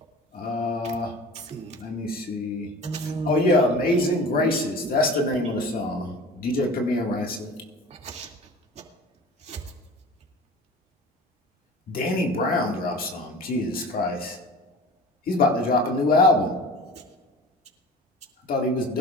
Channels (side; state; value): both; normal; correlation 0.39